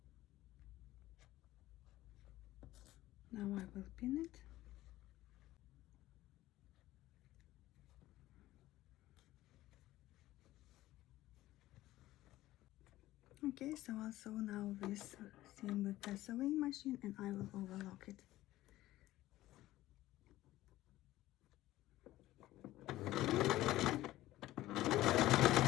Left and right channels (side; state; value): right; quieter; 15.9 dB